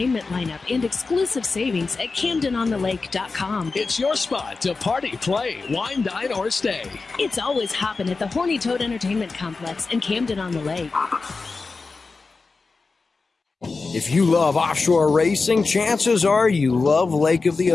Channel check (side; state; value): right; quieter; 4.1 dB